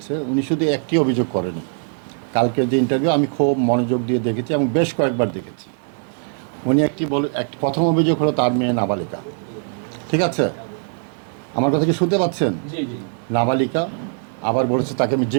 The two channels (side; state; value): left; silent; 65 dB below the other